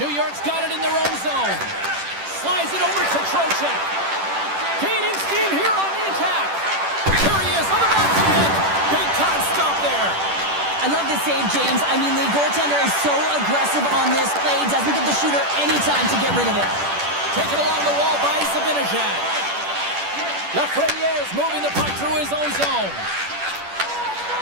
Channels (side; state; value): left; late; 10 ms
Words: New York's got it in their own zone. Slides it over to Trocheck. Gaining steam here on the attack. Here he is on the backhand. Big time stop there. I love this save, James. I mean, the goaltender is so aggressive on this play. Doesn't give the shooter any time to get rid of it. Taken along the wall by Zibanejad. Lafreniere's moving the puck through his own zone.